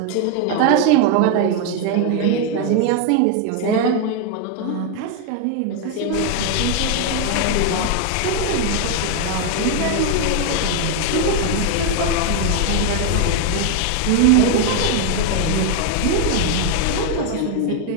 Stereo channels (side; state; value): both; different; correlation 0.01